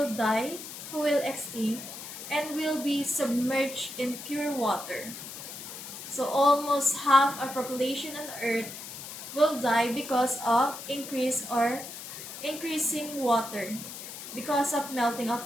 die, who will extinct, and will be submerged in pure water. So almost half our population on Earth will die because of increasing water because of melting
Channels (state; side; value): noise; left; hiss, 11 dB below the sound